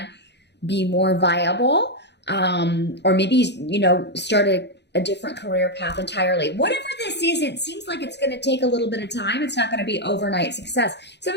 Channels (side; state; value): right; late; 0.50 ms